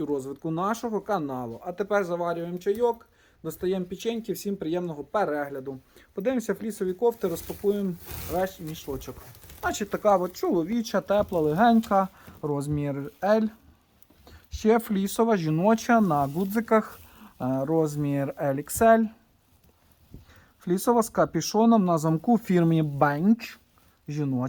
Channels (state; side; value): identical; both; correlation 1.00